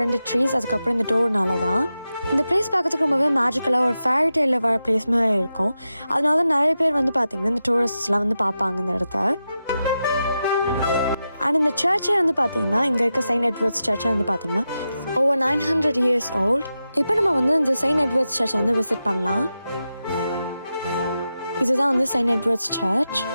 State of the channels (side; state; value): both; inverted; correlation -0.90